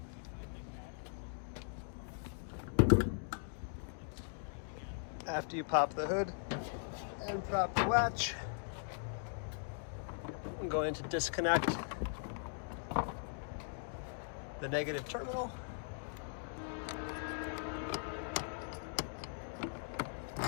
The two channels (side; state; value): right; silent; digital silence